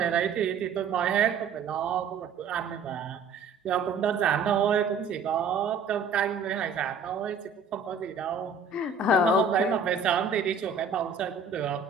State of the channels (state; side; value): quieter; left; 4.9 dB